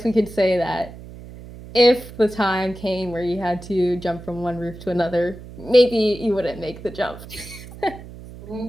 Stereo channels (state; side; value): noise; right; hum, 15 dB below the sound